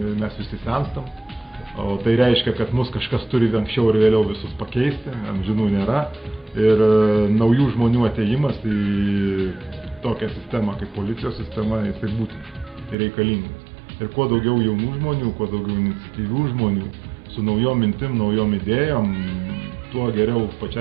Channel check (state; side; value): drops out; left; at 13.0 s